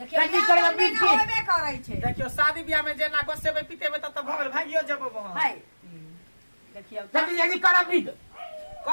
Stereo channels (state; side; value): inverted; both; correlation -1.00